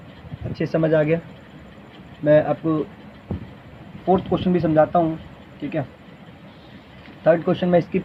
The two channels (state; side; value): identical; both; correlation 1.00